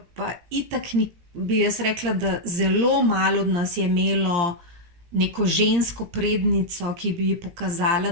pa itak bi jaz rekla, da zelo malo od nas je imelo neko žensko prednico, ki bi pokazala,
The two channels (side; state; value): left; late; 17 ms